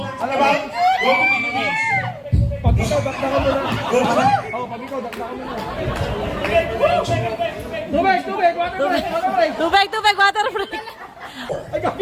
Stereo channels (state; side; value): identical; both; correlation 1.00